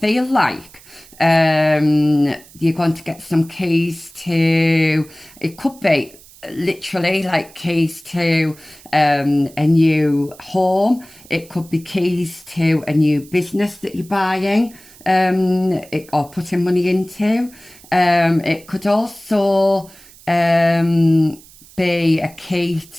like you're going to get some keys to, it could be literally like keys to a new home. It could be keys to a new business that you're buying or putting money into. It could also be a key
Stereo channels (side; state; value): right; noise; hiss, 23 dB below the sound